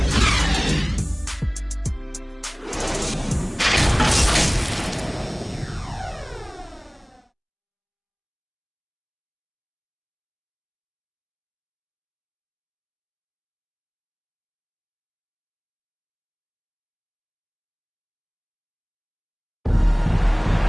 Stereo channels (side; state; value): both; identical; correlation 1.00